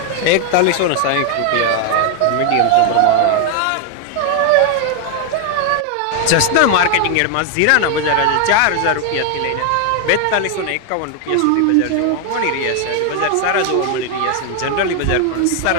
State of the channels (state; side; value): different; both; correlation 0.00